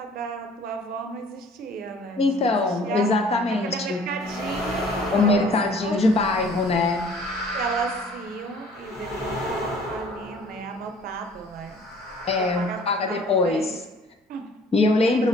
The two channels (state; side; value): normal; both; correlation 0.53